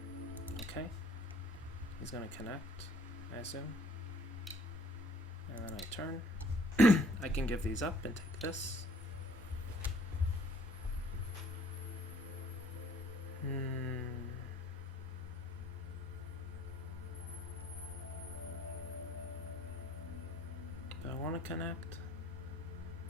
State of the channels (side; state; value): both; normal; correlation 0.57